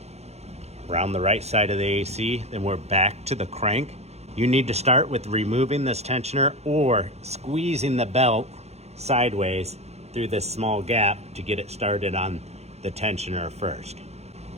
around the right side of the AC, then we're back to the crank. You need to start with removing this tensioner or squeezing the belt sideways through this small gap to get it started on the tensioner first.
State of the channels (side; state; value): left; late; 0.31 ms